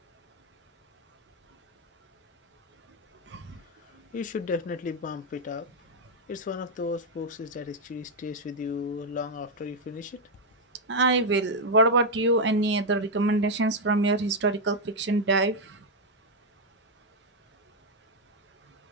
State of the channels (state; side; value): normal; both; correlation 0.02